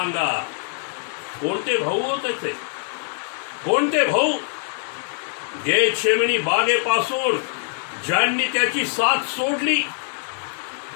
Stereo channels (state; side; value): silent; right; 55 dB below the other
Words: कोणते भाऊ हो त्याचे? कोणते भाऊ? गेतशेमनी बागेपासून ज्यांनी त्याची साथ सोडली,